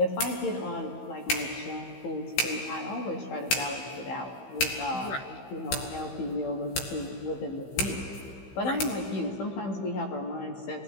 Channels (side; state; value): right; late; 15 ms